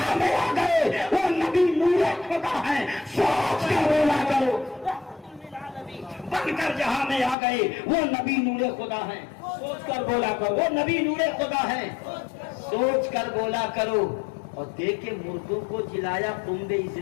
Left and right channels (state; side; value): drops out; right; at 7.4 s